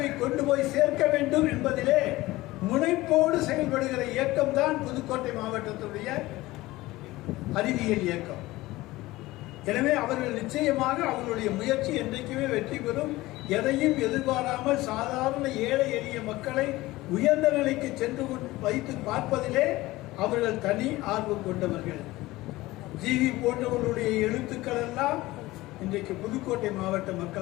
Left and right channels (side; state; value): right; quieter; 18.7 dB